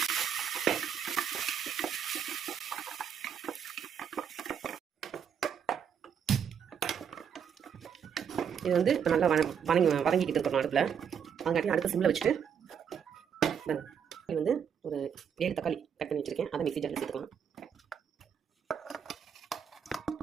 இது வந்து இப்போ நல்லா வதங்கிக்கிட்டு இருக்கணும் அடுப்பில். அதுங்காட்டி அடுத்த சிம்மில் வச்சுட்டு இது வந்து ஒரு 7 தக்காளி கட் பண்ணி வச்சுருக்கேன். அதை மிக்ஸி ஜாரில் சேர்த்துக்கலாம்.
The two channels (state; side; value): quieter; left; 7.8 dB